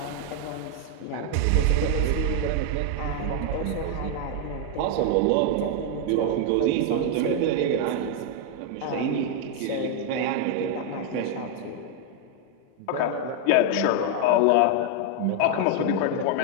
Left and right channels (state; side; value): different; both; correlation 0.00